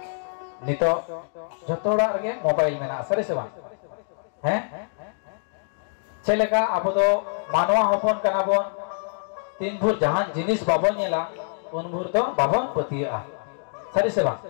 नितो जतोड़ा रगे मोबाइल में ना सरे से बा हैं चलेगा अब तो मानवा होपन कना बन 3 भूर जहां जिनिस बाबन नेला उन भूर तो बाबन पतिया सरे से बा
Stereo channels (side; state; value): right; silent; digital silence